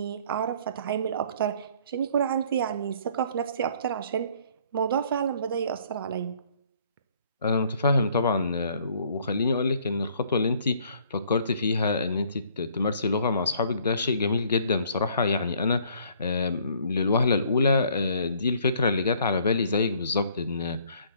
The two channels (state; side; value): inverted; both; correlation -0.60